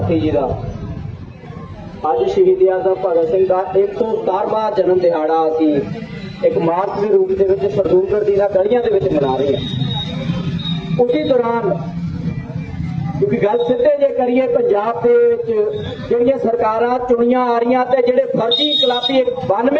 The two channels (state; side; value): identical; both; correlation 1.00